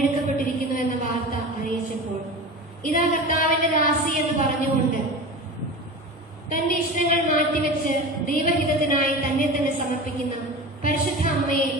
എന്ന വാർത്ത അറിയിച്ചപ്പോൾ ഇതാ കർത്താവിന്റെ ദാസി എന്ന് പറഞ്ഞുകൊണ്ട് തന്റെ ഇഷ്ടങ്ങൾ മാറ്റിവെച്ച് ദൈവഹിതത്തിനായി തന്നെ തന്നെ സമർപ്പിക്കുന്ന പരിശുദ്ധ അമ്മയെ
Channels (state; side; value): normal; both; correlation 0.30